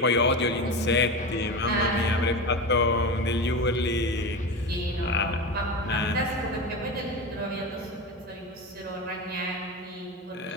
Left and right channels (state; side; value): normal; both; correlation 0.23